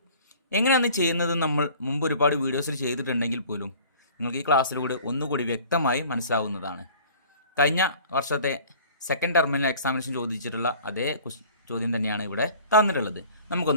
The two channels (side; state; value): both; inverted; correlation -0.48